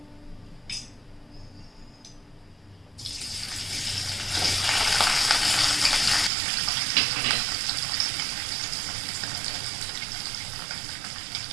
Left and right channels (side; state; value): left; drops out; at 6.3 s